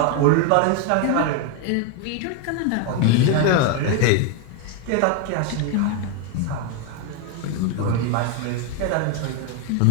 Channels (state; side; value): different; both; correlation 0.01